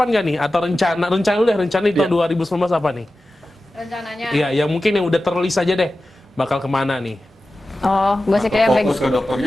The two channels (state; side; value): normal; both; correlation 0.94